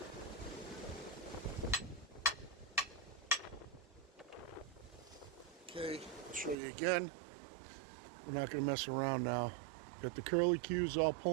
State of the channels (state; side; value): drops out; left; at 6.6 s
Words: Okay, I'll show you again. We're not going to mess around now. Got the curly cues all